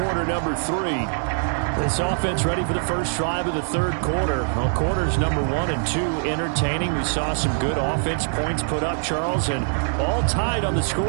number 3. This offense ready for the first drive of the third quarter. Well, quarters number 1 and 2 entertaining. We saw some good offense points put up, Charles, and all tied on the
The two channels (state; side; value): silent; left; 63 dB below the other